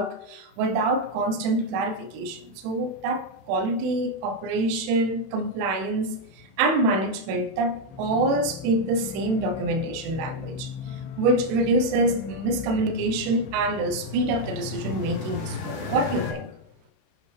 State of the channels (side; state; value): left; late; 31 ms